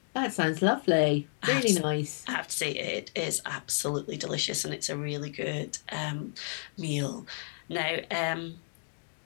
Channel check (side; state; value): right; silent; digital silence